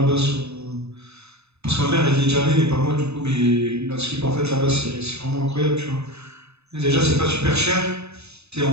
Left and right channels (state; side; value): late; left; 0.80 ms